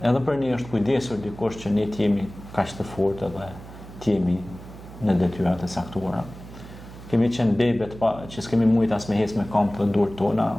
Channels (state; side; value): noise; right; hum, 16 dB below the sound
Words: edhe për ne është kujdesur dikush që ne të jemi kaq të fortë dhe të jemi në detyrat e saktuara. Kemi qenë bebet që s'kemi mujt as me ecë me këmbë të durët tona,